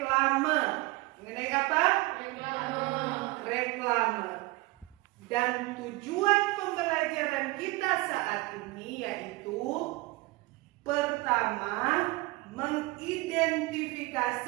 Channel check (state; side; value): quieter; left; 22.5 dB